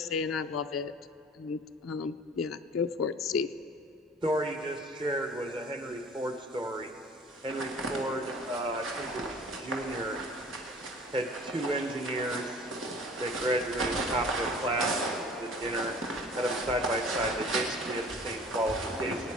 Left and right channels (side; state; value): both; normal; correlation 0.47